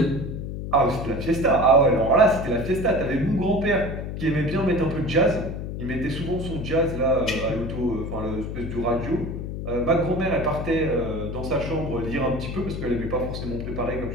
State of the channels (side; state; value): left; noise; hum, 6 dB below the sound